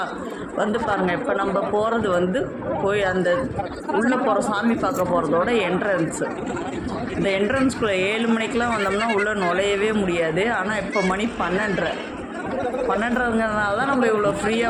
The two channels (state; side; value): identical; both; correlation 1.00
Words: பாருங்கள். இப்போ நம்ம போகிறது போய் அந்த உள்ளே போகிற சாமி பார்க்க போகிறதோட என்ட்ரன்ஸு. இந்த என்ட்ரன்ஸ்குள்ளே 7 மணிக்கெலாம் வந்தோம்னா உள்ளே நுழையவே முடியாது. ஆனால் இப்போ மணி 12:30ங்கிறதுனால தான் நம்ம இவ்வளோ